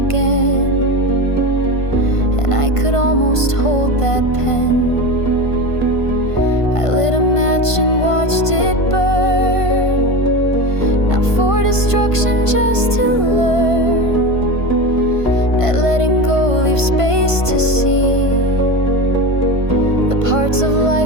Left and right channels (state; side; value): late; right; 1.5 ms